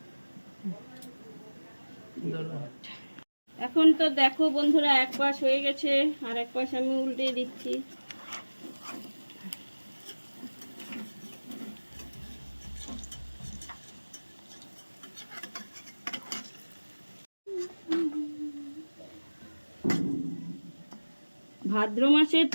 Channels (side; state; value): both; inverted; correlation -1.00